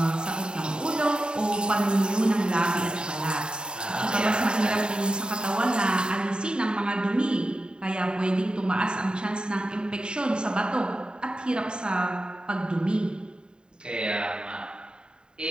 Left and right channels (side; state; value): left; late; 0.049 ms